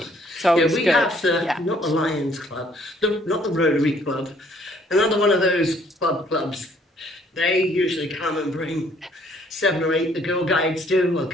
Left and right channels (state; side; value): normal; both; correlation 0.62